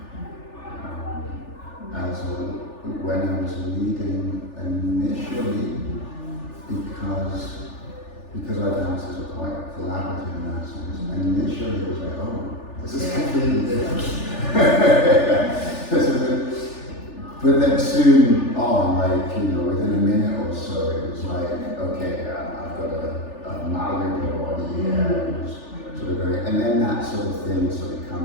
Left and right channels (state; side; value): late; right; 3.4 ms